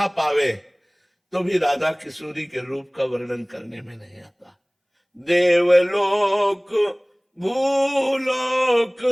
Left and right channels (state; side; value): identical; both; correlation 1.00